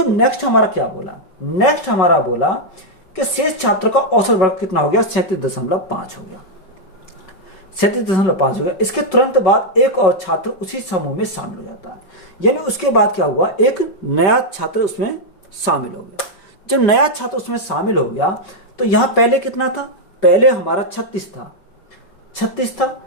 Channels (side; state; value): right; late; 5.4 ms